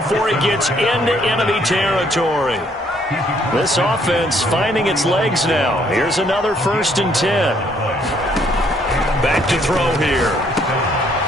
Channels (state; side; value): normal; both; correlation 0.67